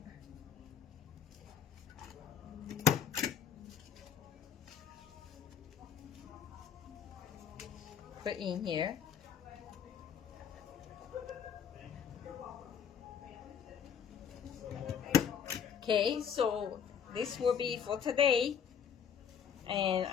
Put in here. Okay, so this will be for today, and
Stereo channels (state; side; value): quieter; right; 7.9 dB